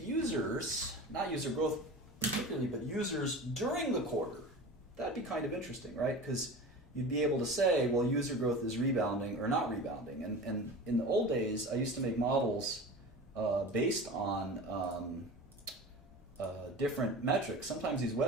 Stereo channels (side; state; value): both; normal; correlation 0.34